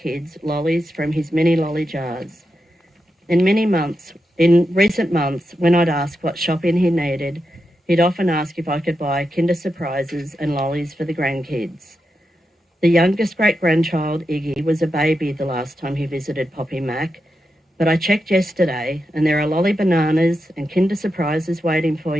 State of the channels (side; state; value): both; normal; correlation 0.88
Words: lollies from his mini lolly jars. In recent months, when I'd ask what shopping he needed, he'd often ask if I could buy Kinder Surprises and lollies for the grandkids. The youngest great-grandchild, Iggy, was a baby the last time he visited Poppy Mack, but I checked yesterday and there are lolly bananas and Kinder Surprises waiting for